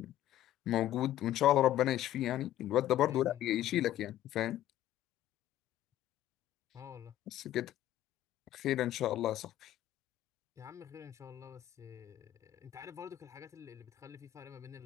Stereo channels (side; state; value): right; quieter; 13.2 dB